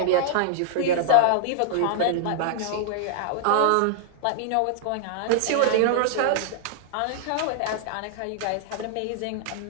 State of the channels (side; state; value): both; different; correlation -0.01